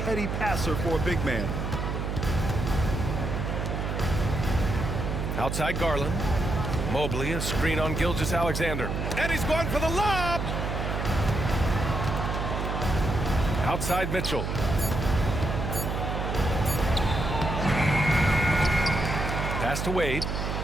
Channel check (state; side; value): noise; right; hum, 2 dB below the sound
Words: passer for a big man. Outside Garland. Mobley, a screen on Gilgeous-Alexander. And he's going for the lob! Outside Mitchell. Pass to Wade.